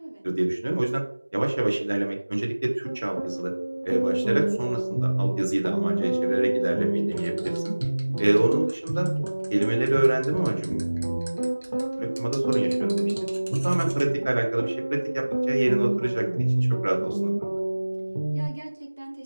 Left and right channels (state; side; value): inverted; both; correlation -1.00